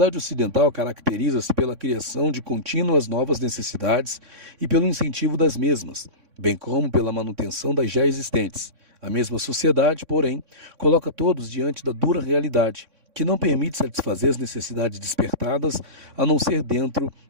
ocidental caracteriza-se pela criação de contínuas novas necessidades e pelo incentivo das mesmas, bem como pela manutenção das já existentes. A mesma sociedade, porém, coloca todos diante da dura realidade, que não permite satisfazer as necessidades despertadas, a não ser dentro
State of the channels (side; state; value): left; late; 3.6 ms